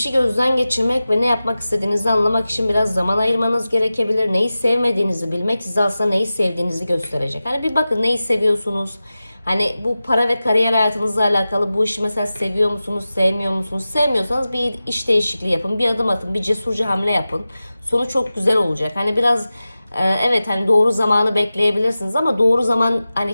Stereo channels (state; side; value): inverted; both; correlation -0.95